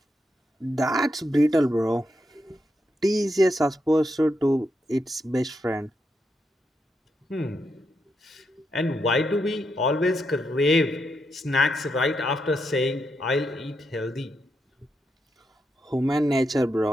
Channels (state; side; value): normal; both; correlation 0.82